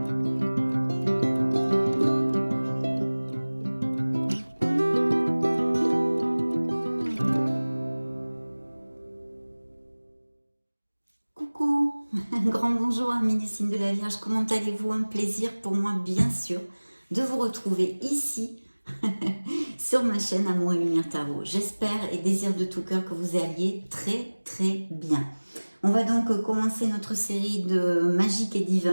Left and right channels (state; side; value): inverted; both; correlation -1.00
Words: un grand bonjour amis du signe de la Vierge, comment allez-vous? Un plaisir pour moi bien sûr de vous retrouver ici sur ma chaîne Amour et Lumière Tarot. J'espère et désire de tout cœur que vous alliez très bien. On va donc commencer notre série de magique et